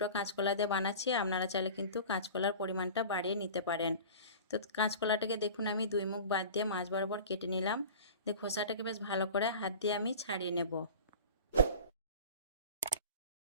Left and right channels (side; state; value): both; inverted; correlation -0.38